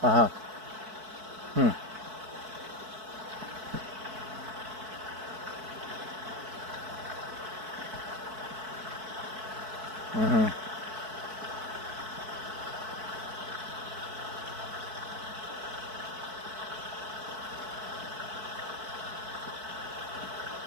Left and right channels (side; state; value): left; late; 4.6 ms